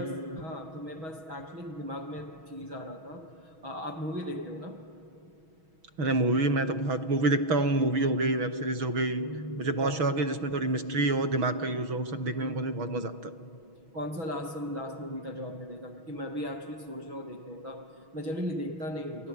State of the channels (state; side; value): late; left; 6.2 ms